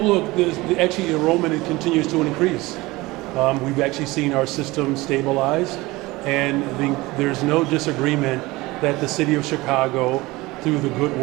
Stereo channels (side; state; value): left; quieter; 20.8 dB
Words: look, actually enrollment continues to increase. We've actually seen our system stabilize, and there's no disagreement that the city of Chicago, through the good